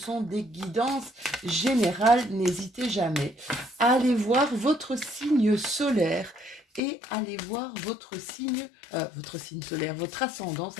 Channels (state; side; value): drops out; right; at 6.8 s